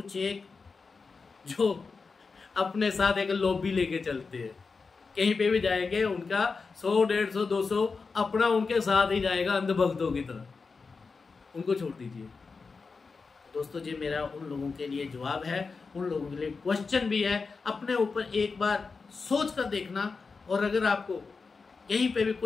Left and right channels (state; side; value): quieter; right; 4.6 dB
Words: एक जो अपने साथ एक लॉबी लेके चलते हैं, कहीं पे भी जाएंगे उनका 100, 150, 200 अपना उनके साथ ही जाएगा अंधभक्तों की तरह, उनको छोड़ दीजिए। दोस्तों ये मेरा उन लोगों के लिए जवाब है, उन लोगों के लिए क्वेश्चन भी है। अपने ऊपर एक बार सोच कर देखना, और अगर आपको कहीं पे भी